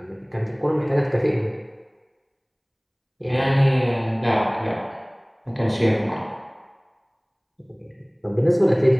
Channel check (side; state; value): both; identical; correlation 1.00